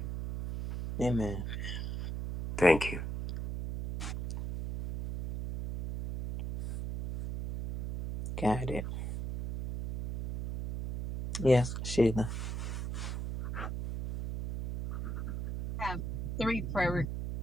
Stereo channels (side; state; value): right; noise; hum, 4 dB below the sound